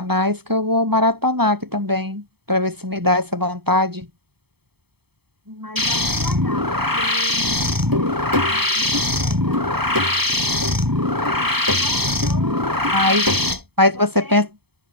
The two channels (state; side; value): late; left; 0.97 ms